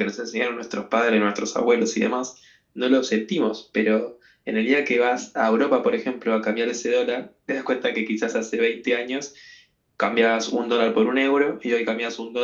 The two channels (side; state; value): both; identical; correlation 1.00